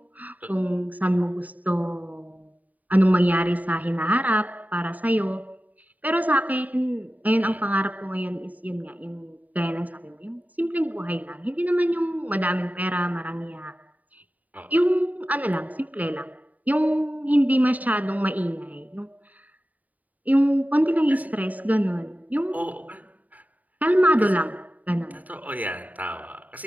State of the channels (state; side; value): late; left; 0.075 ms